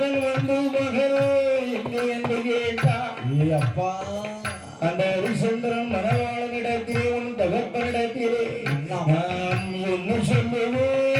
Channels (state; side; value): identical; both; correlation 1.00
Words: அந்த ஹரிச்சந்திரன் மனவாளனிடத்திலே உன் தகப்பனிடத்திலே நான் என்ன